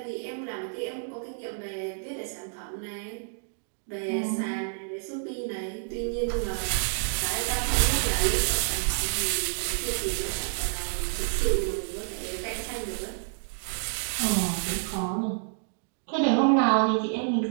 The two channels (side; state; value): left; silent; digital silence